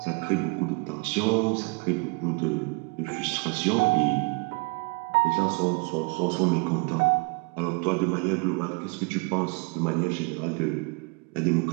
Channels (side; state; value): left; quieter; 31.3 dB